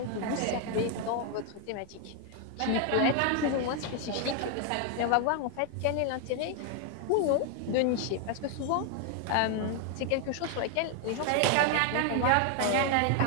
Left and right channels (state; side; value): different; both; correlation 0.01